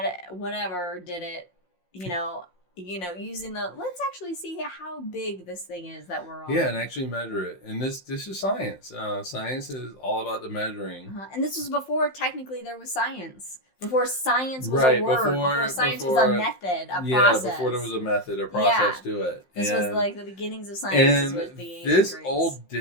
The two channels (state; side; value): late; right; 5.6 ms